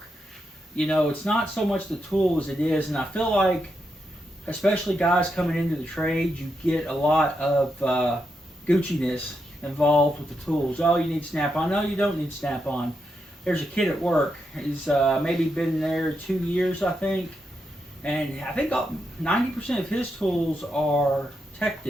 You know, it's not so much the tool as it is, and I feel like, especially guys coming into the trade, you get a lot of Gucci-ness involved with the tools. Oh, you need snap-on. No, you don't need snap-on. There's a kid at work. He's maybe been there 2 years, I think. And I think 90% of his tools are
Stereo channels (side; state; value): both; normal; correlation 0.84